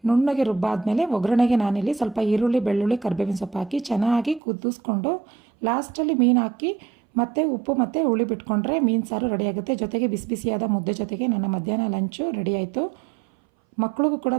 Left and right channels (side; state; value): left; drops out; at 4.4 s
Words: ನುಣ್ಣಗೆ ರುಬ್ಬಾದಮೇಲೆ ಒಗ್ಗರಣೆಗೆ ನಾನಿಲ್ಲಿ ಸ್ವಲ್ಪ ಈರುಳ್ಳಿ, ಬೆಳ್ಳುಳ್ಳಿ, ಕರಿಬೇವಿನ ಸೊಪ್ಪು ಹಾಕಿ ಚೆನ್ನಾಗಿ ಕುದಿಸ್ಕೊಂಡು ಲಾಸ್ಟಲ್ಲಿ ಮೀನು ಹಾಕಿ ಮತ್ತು ಉಪ್ಪು ಮತ್ತು ಹುಳಿ ಬಿಟ್ಕೊಂಡ್ರೆ ಮೀನು ಸಾರು ರೆಡಿಯಾಗುತ್ತೆ. ಜೊತೆಗೆ ಬಿಸಿ ಬಿಸಿಯಾದ ಮುದ್ದೆ ಜೊತೆಗೆ ನನ್ನ ಮಧ್ಯಾಹ್ನ ಲಂಚು ರೆಡಿ ಆಯಿತು. ಮಕ್ಕಳಿಗೂ ಕೂಡ